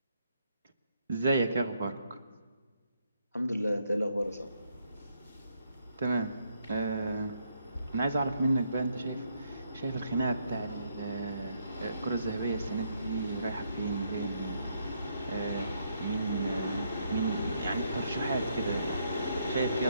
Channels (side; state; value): both; inverted; correlation -0.75